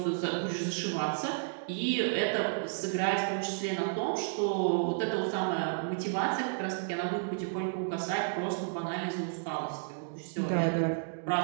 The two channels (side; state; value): left; silent; digital silence